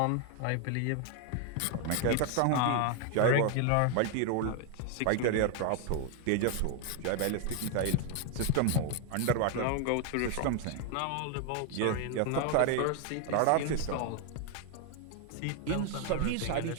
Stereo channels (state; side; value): different; both; correlation 0.01